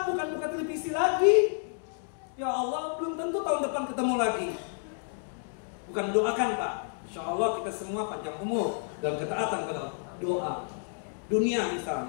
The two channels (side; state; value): right; silent; 58 dB below the other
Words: bukan buka televisi lagi. Ya Allah, belum tentu tahun depan ketemu lagi. Bukan doakan Pak, Insya Allah kita semua panjang umur dan ketaatan kepada Allah. Doa dunia